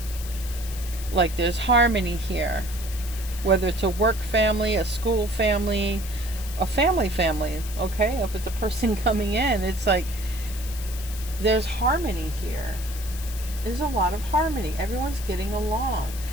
like, there's harmony here. Whether it's a work family, a school family, a family, okay? If it's a person coming in, it's like there's harmony here. There's a lot of harmony. Everyone's getting along.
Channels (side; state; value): left; noise; hiss, 13 dB below the sound